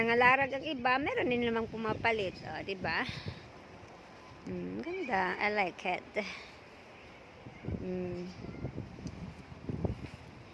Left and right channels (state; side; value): identical; both; correlation 1.00